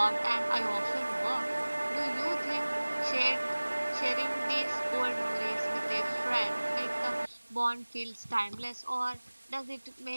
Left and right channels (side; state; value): both; inverted; correlation -1.00